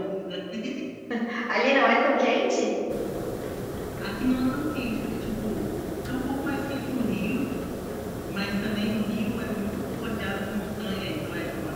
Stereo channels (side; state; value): both; identical; correlation 1.00